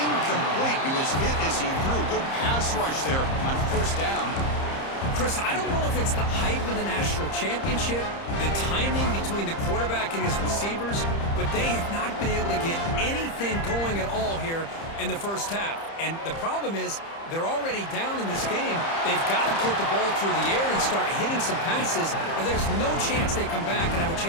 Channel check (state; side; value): late; right; 30 ms